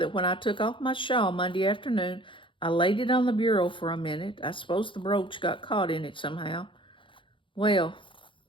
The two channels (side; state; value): right; late; 0.25 ms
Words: when I took off my shawl Monday afternoon, I laid it on the bureau for a minute. I suppose the brooch got caught in it somehow. Well,